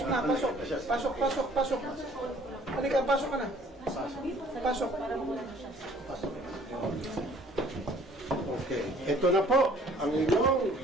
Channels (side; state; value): both; normal; correlation 0.56